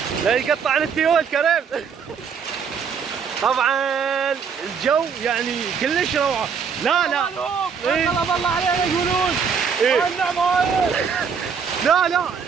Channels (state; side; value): quieter; left; 6.4 dB